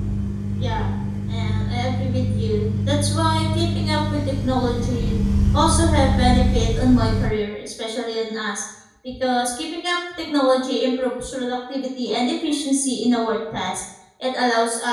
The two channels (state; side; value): identical; both; correlation 1.00